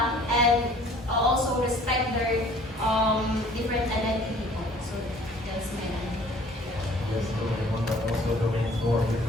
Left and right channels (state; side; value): normal; both; correlation 0.53